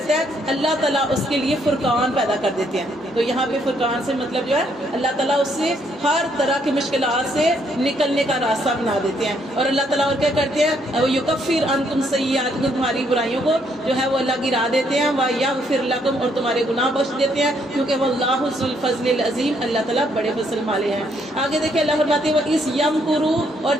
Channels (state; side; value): normal; both; correlation 0.71